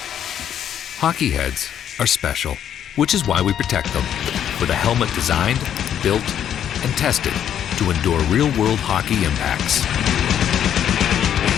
Hockey heads are special, which is why we protect them with a helmet designed, built, and tested to endure real-world hockey impacts.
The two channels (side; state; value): right; quieter; 9.7 dB